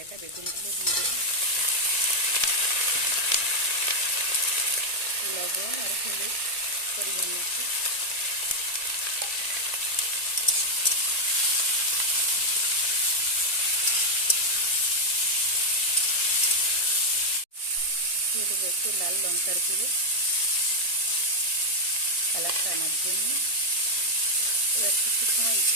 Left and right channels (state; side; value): late; right; 1.9 ms